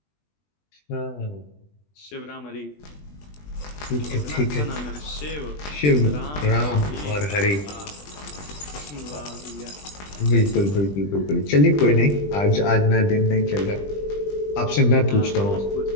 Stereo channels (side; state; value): right; late; 20 ms